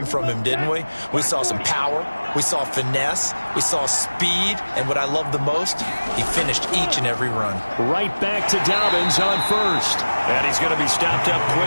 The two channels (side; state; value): both; inverted; correlation -1.00